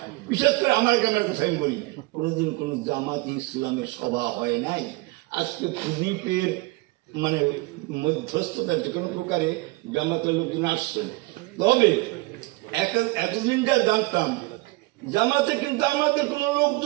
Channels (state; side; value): quieter; left; 22.6 dB